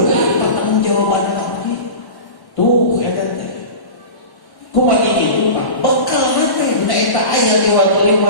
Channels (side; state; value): right; late; 1.1 ms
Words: pertanggungjawabanna tadi. Tuh eta teh. Kumaha kitu Pak? Bekal teh na eta aya di waktu